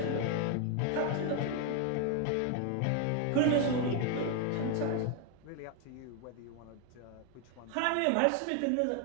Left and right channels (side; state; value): both; different; correlation 0.01